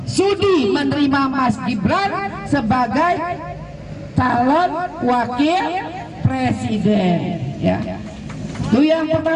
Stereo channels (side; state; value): both; identical; correlation 1.00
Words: sudi menerima Mas Gibran sebagai calon wakil presiden, ya. Itu yang